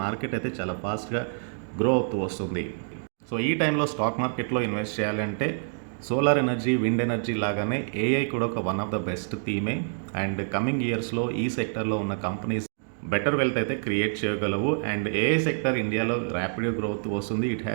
మార్కెట్ అయితే చాలా ఫాస్ట్గా గ్రో అవుతూ వస్తుంది. సో ఈ టైంలో స్టాక్ మార్కెట్లో ఇన్వెస్ట్ చేయాలంటే సోలార్ ఎనర్జీ, విండ్ ఎనర్జీ లాగానే ఏఐ కూడా ఒక వన్ ఆఫ్ ద బెస్ట్ థీమే. అండ్ కమింగ్ ఇయర్స్లో ఈ సెక్టర్లో ఉన్న కంపెనీస్ బెటర్ వెల్త్ అయితే క్రియేట్ చేయగలవు. అండ్ ఏఐ సెక్టర్ ఇండియాలో ర్యాపిడ్ గ్రోత్ వస్తుంది. It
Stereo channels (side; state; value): left; silent; digital silence